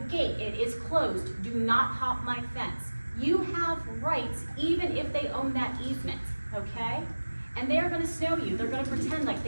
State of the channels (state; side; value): inverted; both; correlation -1.00